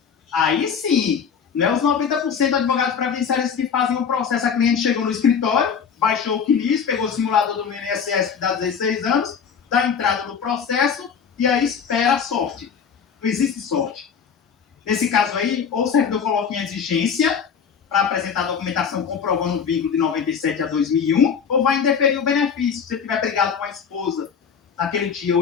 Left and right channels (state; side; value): quieter; right; 6.8 dB